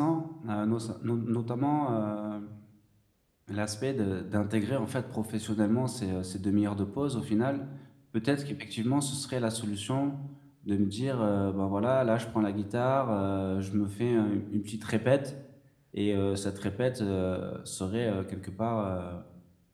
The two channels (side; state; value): both; identical; correlation 1.00